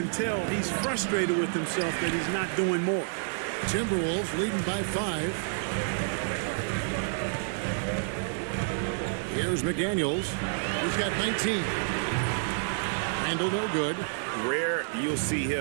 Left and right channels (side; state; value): left; silent; digital silence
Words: tell he's frustrated with himself that he's not doing more. Timberwolves leading by 5. Here's McDaniels. He's got 19. Randall no good. Rare you'll see